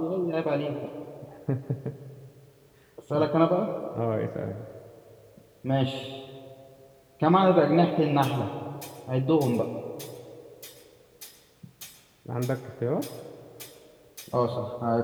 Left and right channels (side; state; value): both; identical; correlation 1.00